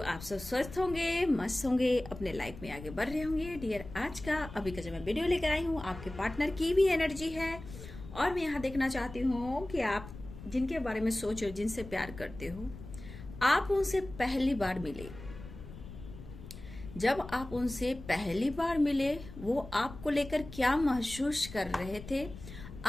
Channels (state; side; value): noise; left; rumble, 14 dB below the sound